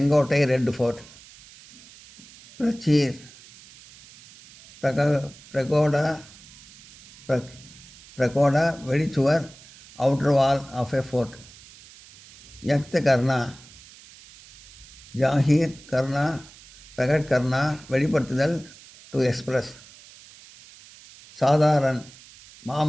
ரெட் ஃபோர்ட். பிரச்சீர் பிரகோடா வெளிச்சுவர், outer wall of a fort. யக்த் கர்னா ஜாஹீர் கர்னா, பிரகட் கர்னா வெளிப்படுத்துதல், டு எக்ஸ்பிரஸ். சாதாரண்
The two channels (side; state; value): right; noise; hiss, 22 dB below the sound